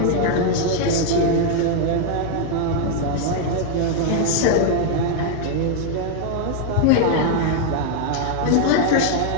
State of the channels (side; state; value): both; different; correlation 0.00